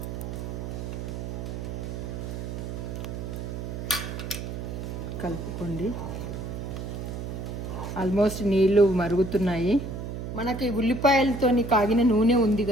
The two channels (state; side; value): noise; right; hum, 6 dB below the sound